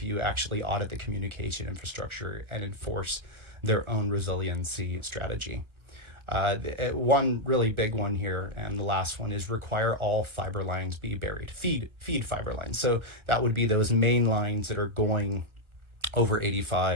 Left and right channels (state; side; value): late; left; 1.3 ms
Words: actually audit the communication infrastructure and enforce their own resiliency strategy. One really big one here, and the last one, is require all fiber lines be buried. Feed fiber lines. So that would be those main lines that are going over